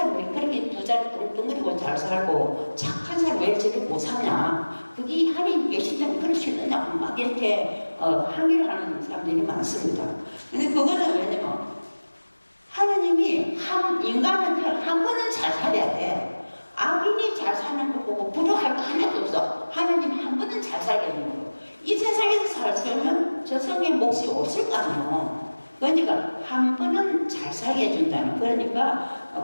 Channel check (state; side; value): inverted; both; correlation -1.00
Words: 왜 그렇게 두 자리 뚱뚱거리고 잘 살고 착한 사람 왜 저렇게 못 사냐, 그게 하나님 계신다면 그럴 수 있느냐고 막 이렇게 항의를 하는 사람들이 많습니다. 근데 그거는 왜냐면 하나님이 인간은 한 번은 잘 살아야 돼. 악인이 잘 사는 거 보고 부러워할 거 하나도 없어. 하나님이 한 번은 잘 살게 되는 거. 이 세상에서 잘 살면 저 성의 몫이 없을 거 아니에요. 그러니까 한 번은 잘 살게 해준다는.